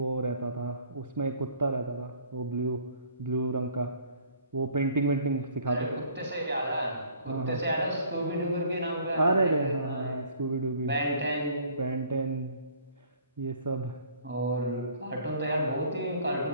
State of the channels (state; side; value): inverted; both; correlation -0.55